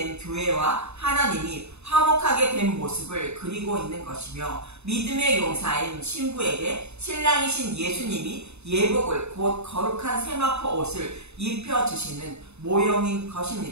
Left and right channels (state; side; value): late; left; 0.81 ms